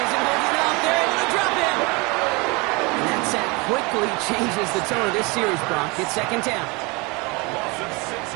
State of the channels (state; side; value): quieter; left; 27.3 dB